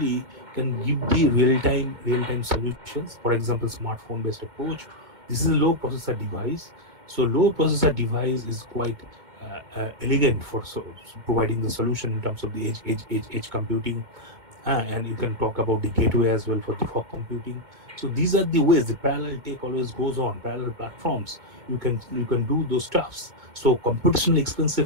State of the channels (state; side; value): late; left; 2.1 ms